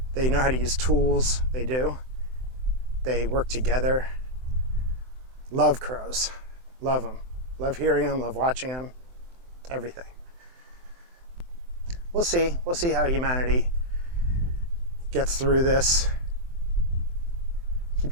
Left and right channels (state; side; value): late; left; 23 ms